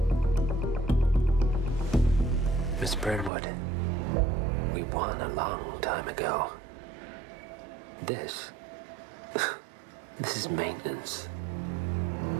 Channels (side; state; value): left; drops out; at 3.3 s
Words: Miss Burnwood, we won a long time ago. This is maintenance.